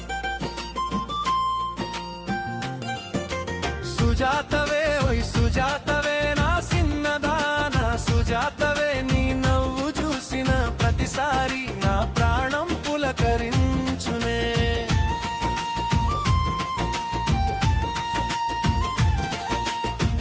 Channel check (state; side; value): identical; both; correlation 1.00